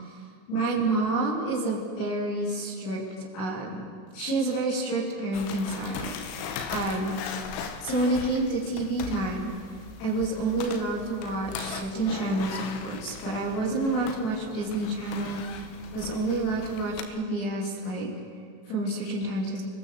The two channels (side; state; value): right; late; 37 ms